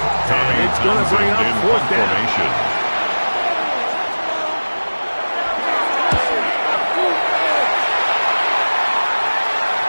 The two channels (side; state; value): both; inverted; correlation -1.00